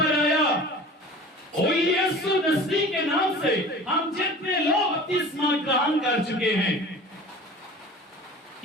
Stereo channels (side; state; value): both; normal; correlation 0.40